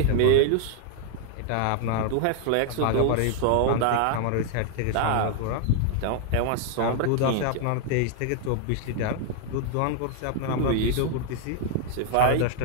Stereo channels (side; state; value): both; different; correlation 0.00